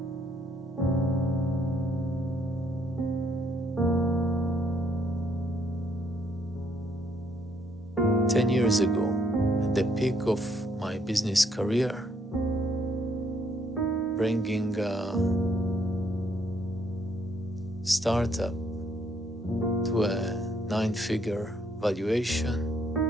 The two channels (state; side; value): normal; both; correlation 0.70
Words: Ten years ago, at the peak of my business career, bringing a startup to a 9-figure valuation,